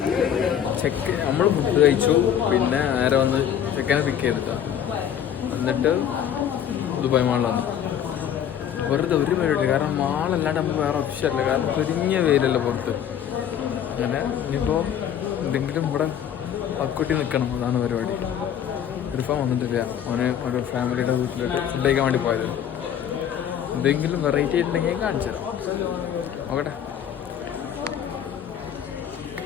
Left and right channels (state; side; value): quieter; right; 9.4 dB